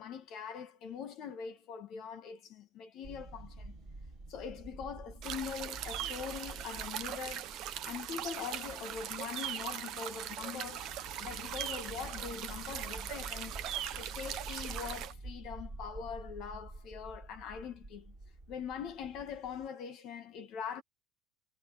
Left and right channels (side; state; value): both; normal; correlation 0.41